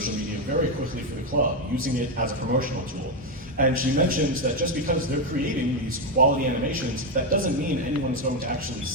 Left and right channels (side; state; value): both; normal; correlation 0.07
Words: media very quickly for the club, using it as a promotional tool. And she mentions that just because they're creating these quality animations, that doesn't mean anyone's going to actually